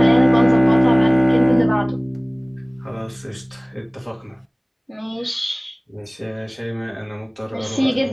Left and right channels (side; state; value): both; identical; correlation 1.00